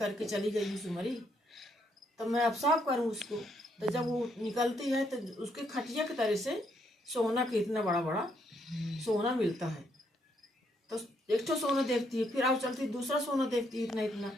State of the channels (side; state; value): both; normal; correlation 0.74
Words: चली गई हूँ सुमरी, तो मैं अब साफ करूँ उसको। तो जब वो निकलती है तो उसके खटिया की तरह से सोना के इतना बड़ा बड़ा सोना मिलता है। तो एक तो सोना देखती है, फिर अब चलती दूसरा सोना देखती है इतना इतना।